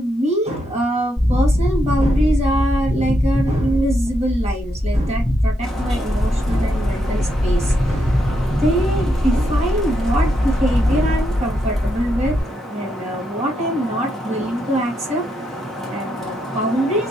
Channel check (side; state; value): both; normal; correlation 0.80